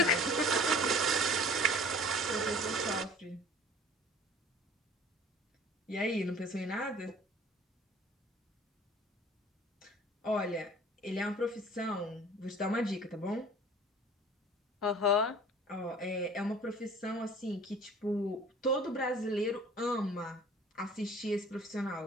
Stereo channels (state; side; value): normal; both; correlation 0.48